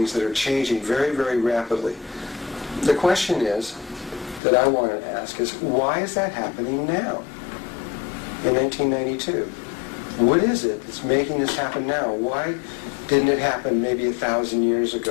that are changing very, very rapidly. The question is, that I want to ask is, why is that happening now, in 1992? What is it that's making this happen now? Why didn't it happen maybe 1,000 years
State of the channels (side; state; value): right; drops out; at 4.4 s